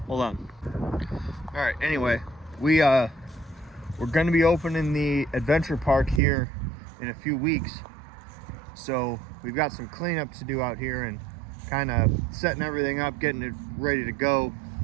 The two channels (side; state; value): left; drops out; at 6.2 s